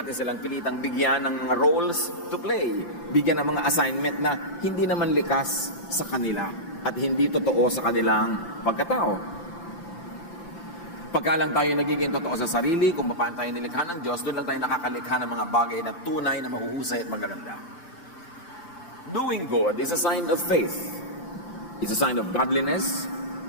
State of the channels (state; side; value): late; right; 5.9 ms